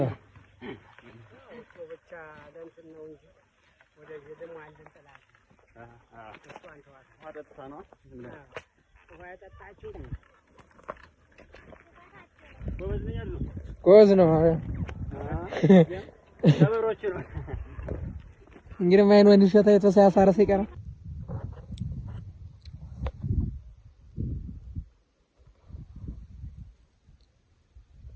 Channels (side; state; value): both; identical; correlation 1.00